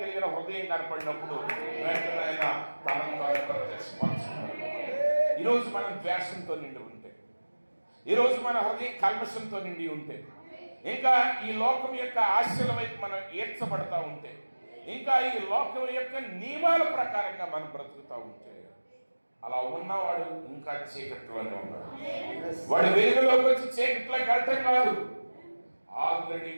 కలిగిన హృదయం కనపడినప్పుడు వెంటనే ఆయన తనను తాను ప్రత్యక్షపరుచుకున్నాడు. ఈరోజు మనం ద్వేషంతో నిండి ఉంటే, ఈరోజు మన హృదయం కల్మషంతో నిండి ఉంటే, ఇంకా ఈ లోకం యొక్క ఆశల వైపు మనం ఏడ్చబడతా ఉంటే, ఇంకా ఈ లోకం యొక్క నియమాల ప్రకారంగా మనం బ్రతుకుతూ ఉంటే, అలా ఉన్నవాడు ఇంకా చీకట్లోనే ఉన్నాడు. వాడు వెలుగులోకి వచ్చి చీకట్లోకి వెళ్ళటం కాదు, ఆల్రెడీ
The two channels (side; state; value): both; inverted; correlation -1.00